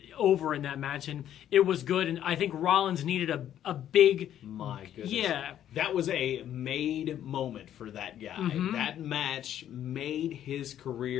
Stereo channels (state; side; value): quieter; right; 10.9 dB